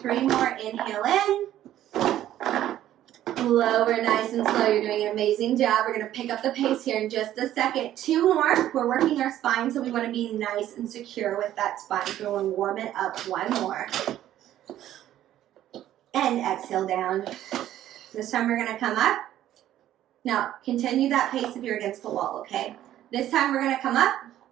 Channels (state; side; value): quieter; left; 12.5 dB